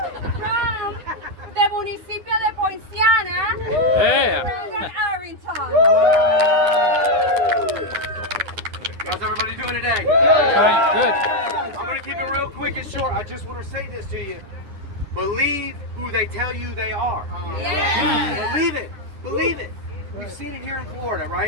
From the municipio de Poinciana, just want to say this to you. Believe who they tell you they are. Yeah. Believe it. Believe it. We've seen it here in Florida,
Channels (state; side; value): late; left; 9.8 ms